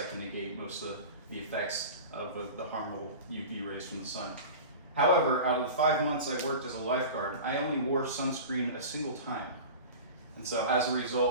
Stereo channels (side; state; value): both; inverted; correlation -0.34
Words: can negate most of the effects of the harmful UV rays from the sun. However, out of the 5 months I worked as a lifeguard, I only wore sunscreen a single time. And so as a